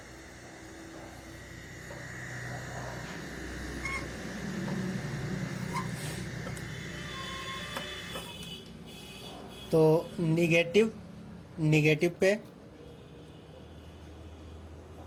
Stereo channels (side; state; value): both; identical; correlation 1.00